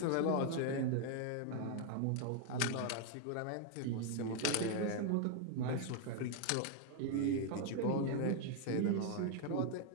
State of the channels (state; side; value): different; both; correlation 0.00